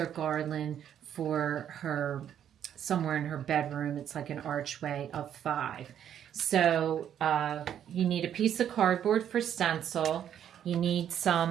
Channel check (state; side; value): quieter; left; 9.7 dB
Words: garland for her somewhere in her bedroom. It's like an archway of 5. So you need a piece of cardboard for stencil. You need